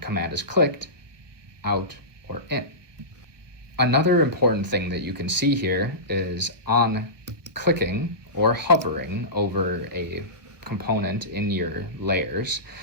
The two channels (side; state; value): left; late; 1.2 ms